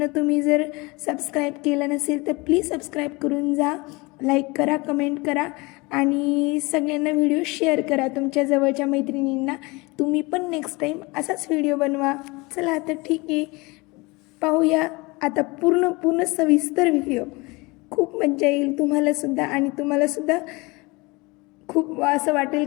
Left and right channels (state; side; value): quieter; right; 25.0 dB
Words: तुम्ही जर सबस्क्राईब केलं नसेल तर प्लीज सबस्क्राईब करून जा. लाईक करा, कमेंट करा आणि सगळ्यांना व्हिडिओ शेअर करा तुमच्या जवळच्या मैत्रिणींना. तुम्ही पण नेक्स्ट टाईम असाच व्हिडिओ बनवा. चला तर ठीक आहे, पाहूया आता पूर्ण सविस्तर व्हिडिओ. खूप मज्जा येईल तुम्हालासुद्धा आणि तुम्हालासुद्धा खूप असं वाटेल